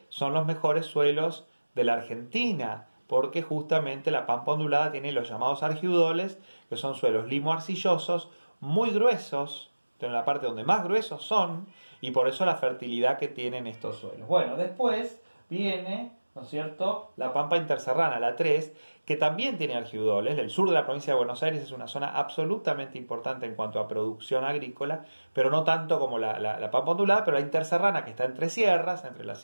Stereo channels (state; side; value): inverted; both; correlation -1.00